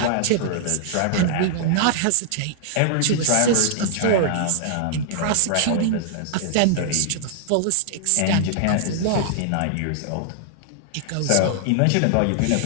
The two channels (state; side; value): different; both; correlation -0.01